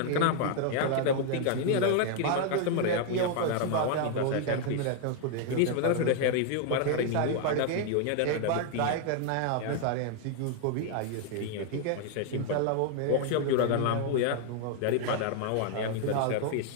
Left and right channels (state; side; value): different; both; correlation 0.00